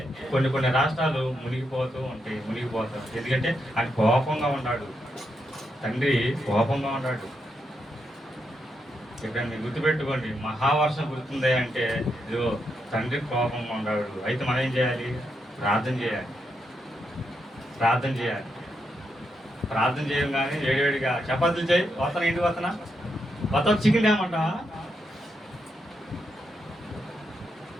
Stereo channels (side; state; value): both; normal; correlation 0.82